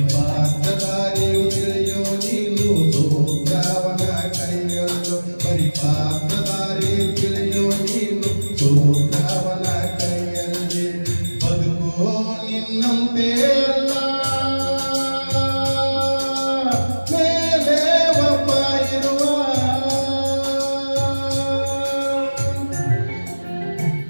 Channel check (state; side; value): inverted; both; correlation -1.00